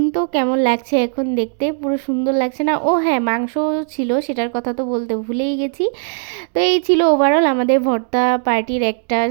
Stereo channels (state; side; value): silent; left; 66 dB below the other